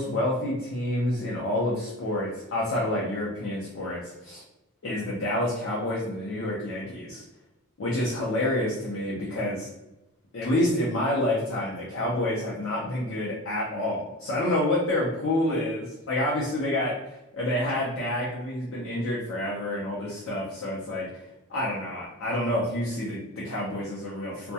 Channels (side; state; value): both; normal; correlation 0.31